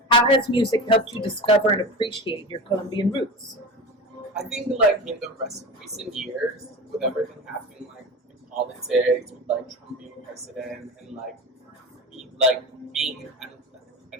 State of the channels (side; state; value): both; normal; correlation 0.29